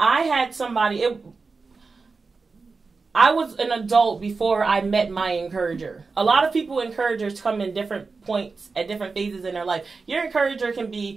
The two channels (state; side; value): quieter; left; 4.3 dB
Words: had somebody. I was an adult before I met my encourager. A lot of people, encouragers, come in different points at different phases in their life. Your encourager can